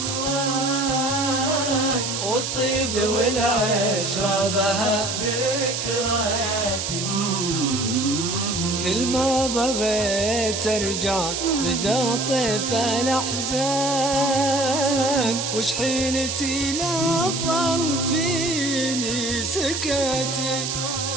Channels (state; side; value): noise; right; hiss, 3 dB below the sound